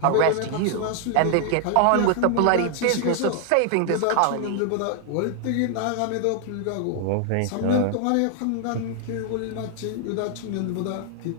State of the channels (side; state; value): both; different; correlation 0.00